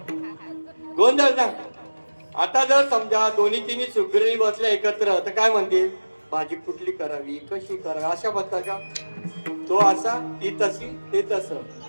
गोंधळ ना. आता जर समजा दोन्ही तिन्ही सुगरी बसल्या एकत्र तर काय म्हणतील, भाजी कुठली करावी, कशी करावी, अशा बसता का. तो असा, ती तशी, ते तसं.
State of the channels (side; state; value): both; inverted; correlation -1.00